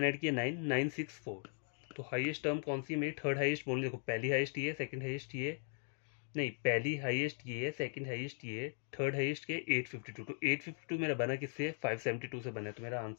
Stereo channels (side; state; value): right; silent; 52 dB below the other